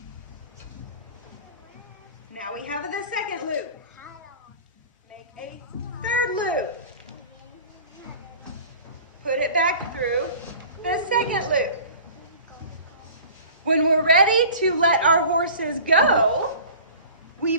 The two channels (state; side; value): inverted; both; correlation -0.42